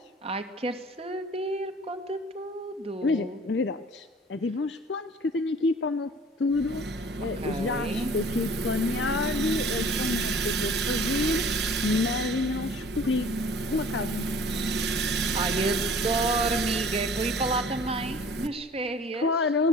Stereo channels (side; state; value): both; normal; correlation 0.48